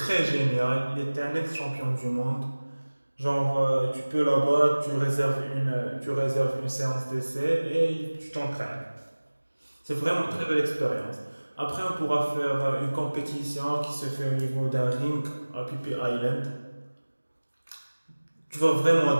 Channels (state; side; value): inverted; both; correlation -1.00